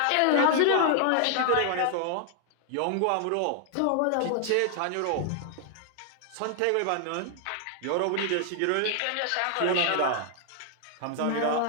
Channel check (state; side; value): different; both; correlation 0.00